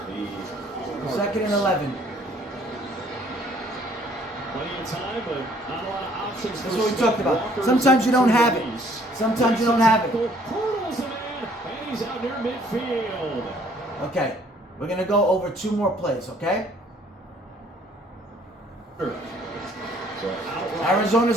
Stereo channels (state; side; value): normal; both; correlation 0.60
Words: and 11. Plenty of time, but not a lot of options. That's what we talked about. Sometimes you don't have it. Sometimes you don't have it. Hurdles a man, and he's out near midfield. Okay. We're going to go over 2 more plays, okay?